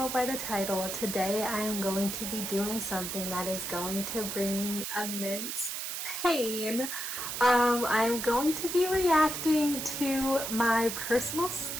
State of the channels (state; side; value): noise; right; hiss, 4 dB below the sound